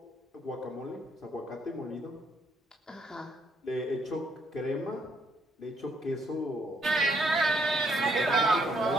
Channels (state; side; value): normal; both; correlation 0.70